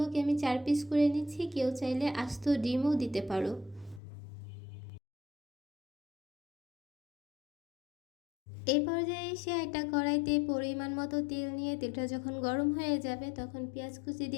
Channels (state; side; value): drops out; right; at 4.0 s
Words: আমি 4 পিস করে নিচ্ছি। কেউ চাইলে আস্ত ডিমও দিতে পারো। এই পর্যায়ে এসে একটা কড়াইতে পরিমাণ মতো তেল নিয়ে তেলটা যখন গরম হয়ে যাবে তখন পেঁয়াজ কুচি